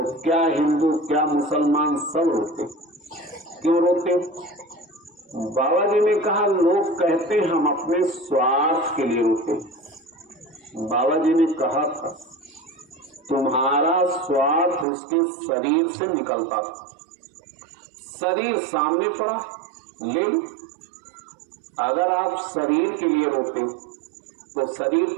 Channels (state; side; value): drops out; left; at 14.9 s